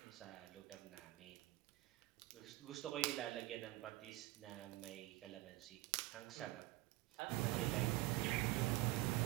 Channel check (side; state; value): left; quieter; 17.7 dB